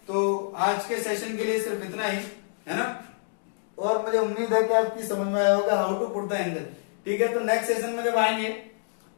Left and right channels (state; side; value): silent; right; digital silence